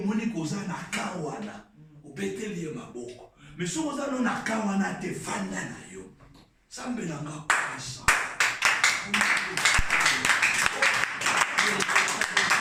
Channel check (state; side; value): identical; both; correlation 1.00